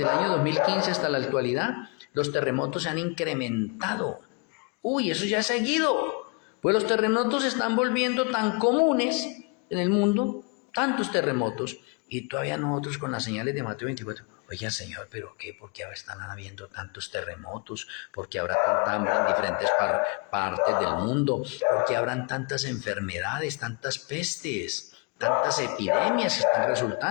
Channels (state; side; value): quieter; right; 33.1 dB